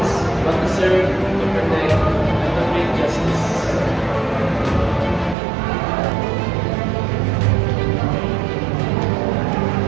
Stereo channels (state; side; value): drops out; left; at 5.4 s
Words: but to serve, to protect, and to bring justice.